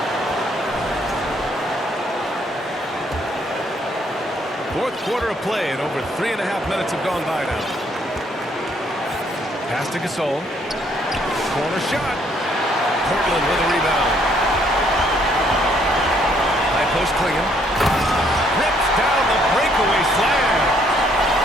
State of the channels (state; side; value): normal; both; correlation 0.67